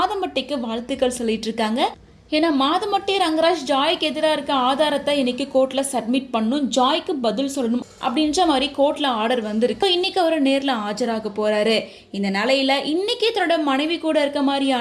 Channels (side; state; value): both; identical; correlation 1.00